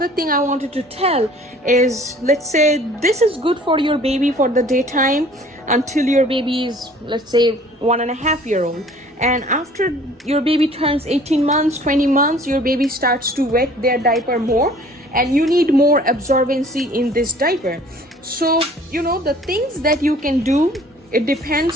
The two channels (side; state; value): both; normal; correlation 0.52